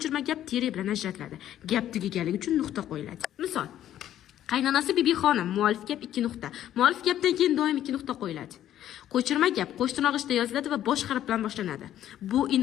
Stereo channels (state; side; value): quieter; right; 11.8 dB